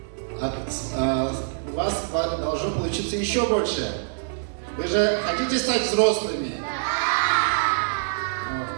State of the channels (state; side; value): silent; left; digital silence